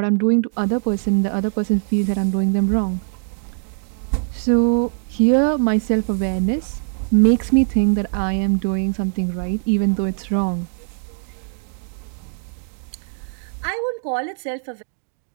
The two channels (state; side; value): silent; left; 65 dB below the other